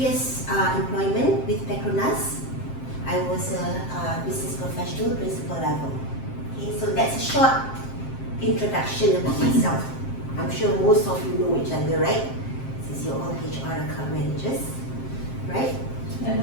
employment with Petronas, I was a business professional, principal level. Okay, so that's a short introduction about myself. I'm sure most of you know each other, right? Since you're all HR account managers, right? I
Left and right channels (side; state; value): right; late; 7.6 ms